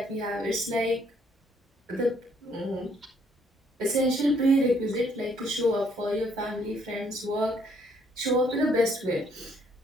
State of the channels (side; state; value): both; normal; correlation 0.67